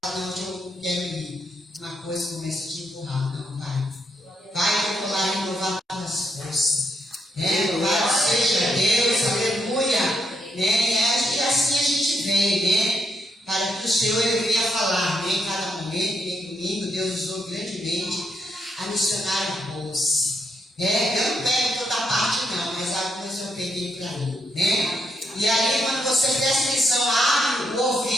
fala, não, eu quero ir. Uma coisa começa a te empurrar. Não, vai. Vai que eu vou lá renovar as forças. Louvado seja Deus, aleluia. E assim a gente vem, para que o Senhor ele venha falar, em cada momento, em domingo, Deus usou grandemente a missionária Rose. Eu não pego toda a parte não, mas algumas eu peguei para mim, E aí quando você presta atenção, abre o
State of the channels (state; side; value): normal; both; correlation 0.78